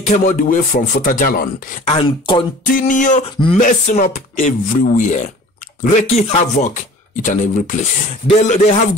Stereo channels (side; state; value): both; normal; correlation 0.45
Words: came all the way from Futajalon and continue messing up everywhere, wreaking havoc each and every place. They have